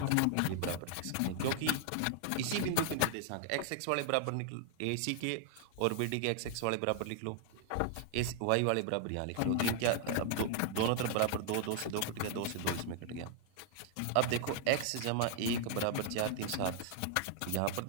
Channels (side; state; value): both; different; correlation 0.00